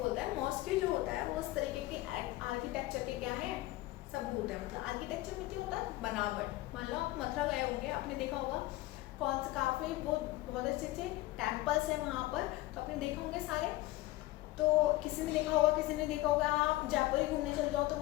है। मॉस्की जो होता है वो उस तरीके के आर्किटेक्चर के क्या है, सबूत है। मतलब आर्किटेक्चर में क्या होता है, बनावट। मान लो आप मथुरा गए होंगे, आपने देखा होगा कौन से काफ़ी बहुत अच्छे अच्छे टेम्पल्स हैं वहाँ पर, तो आपने देखा होंगे सारे, तो किसी ने देखा होगा, किसी ने देखा होगा। आप जयपुर ही घूमने चल जाओ तो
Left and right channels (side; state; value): right; quieter; 17.9 dB